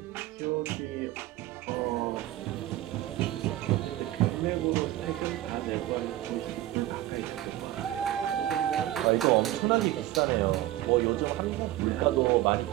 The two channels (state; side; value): quieter; left; 14.8 dB